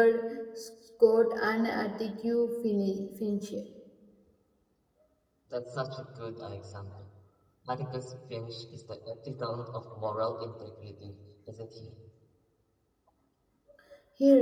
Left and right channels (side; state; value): both; identical; correlation 1.00